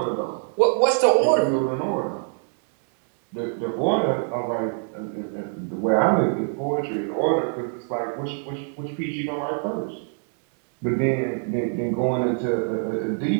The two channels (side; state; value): left; silent; 57 dB below the other